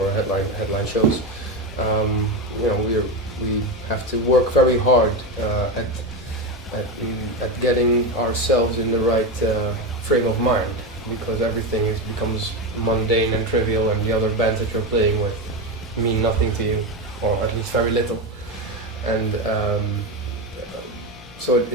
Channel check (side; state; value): both; normal; correlation 0.15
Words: headline shows, we have to work very hard at getting ourselves in the right frame of mind, because everything becomes mundane and trivial, and the other bands that you're playing with mean nothing to you, or at least very little. And so